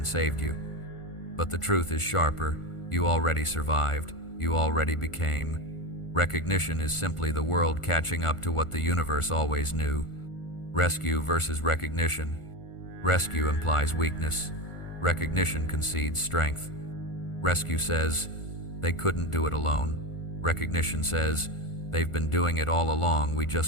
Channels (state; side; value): late; right; 1.4 ms